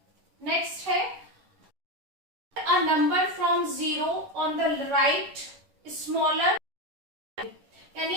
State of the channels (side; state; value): left; late; 11 ms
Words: नेक्स्ट है a number from 0 on the right smaller,